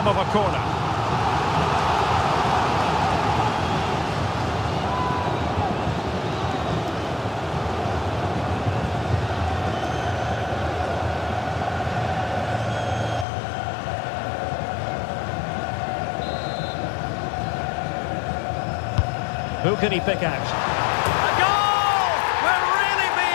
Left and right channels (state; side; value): drops out; right; at 13.2 s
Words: of a corner. Who can he pick out? A goal! We're really